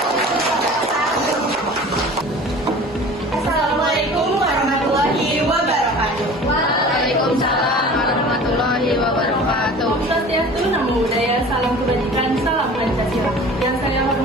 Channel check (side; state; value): both; normal; correlation 0.42